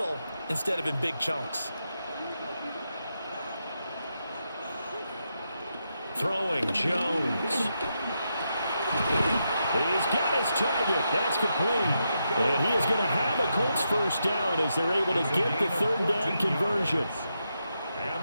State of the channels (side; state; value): both; inverted; correlation -0.84